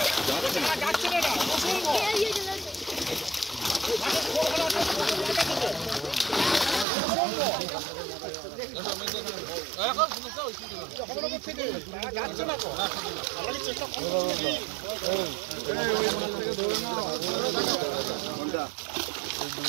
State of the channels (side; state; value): left; drops out; at 6.9 s